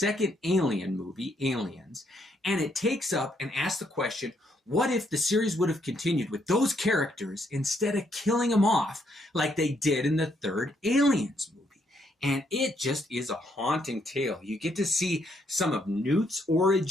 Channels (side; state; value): both; normal; correlation 0.73